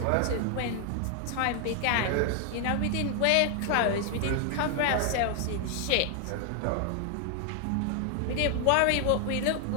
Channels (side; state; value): both; different; correlation 0.00